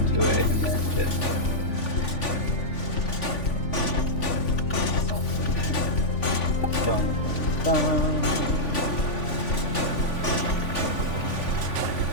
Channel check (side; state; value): right; late; 3.5 ms